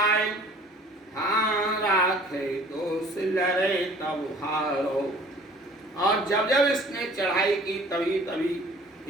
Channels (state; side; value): normal; both; correlation 0.51